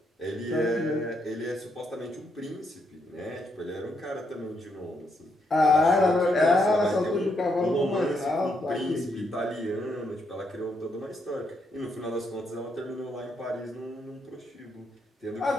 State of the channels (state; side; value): normal; both; correlation 0.77